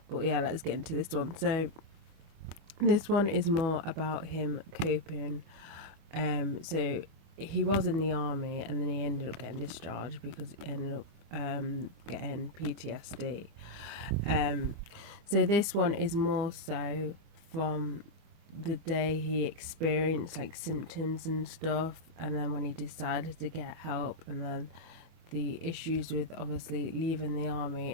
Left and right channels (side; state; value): left; late; 25 ms